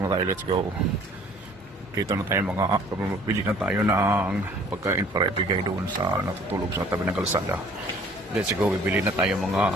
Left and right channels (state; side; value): normal; both; correlation 0.54